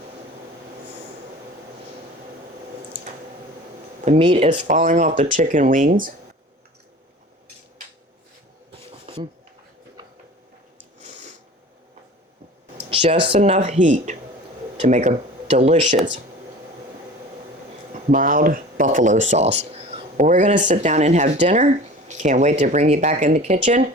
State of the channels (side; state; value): both; normal; correlation 0.40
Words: The meat is falling off the chicken wings. Just enough heat to make a delicious mild buffalo sauce. Well, we're going to sit down and have dinner. Can't wait to bring you back in the kitchen